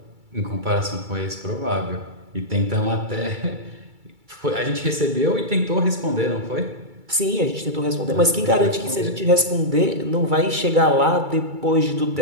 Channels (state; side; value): late; left; 2.3 ms